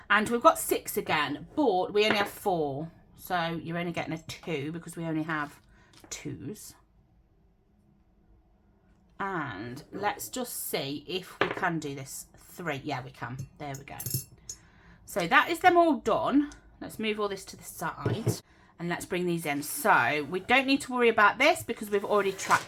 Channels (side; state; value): both; identical; correlation 1.00